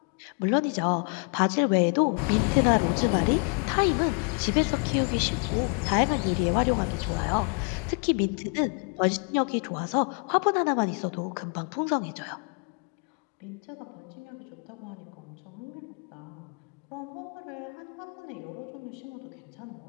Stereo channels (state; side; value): quieter; right; 37.4 dB